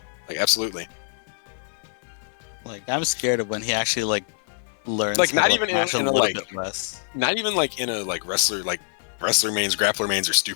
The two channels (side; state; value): right; silent; digital silence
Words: like absolutely. like I'm scared of when he actually like learns. Like, how not to even mash a in a, little like- bit less. Not even like in a wrestler mains, grappler mains are